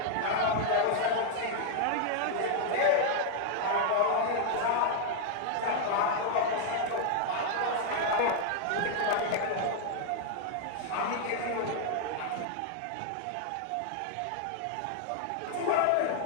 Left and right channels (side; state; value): both; different; correlation -0.01